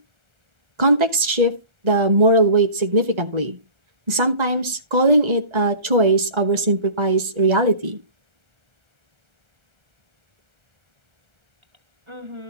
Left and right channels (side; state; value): left; late; 1.3 ms